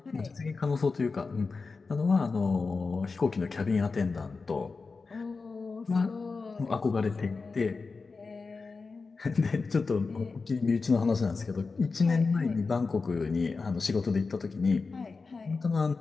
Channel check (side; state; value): right; quieter; 4.3 dB